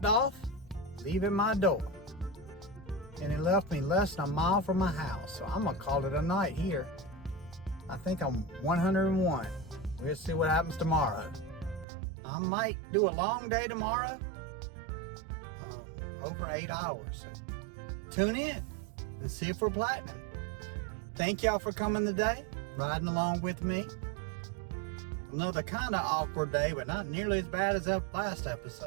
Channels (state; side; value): drops out; left; at 11.9 s